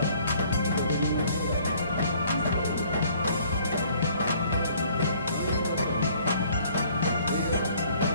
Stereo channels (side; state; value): both; inverted; correlation -0.59